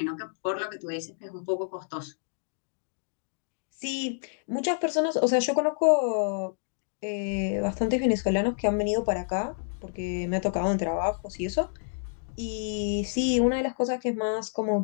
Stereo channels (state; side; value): silent; right; digital silence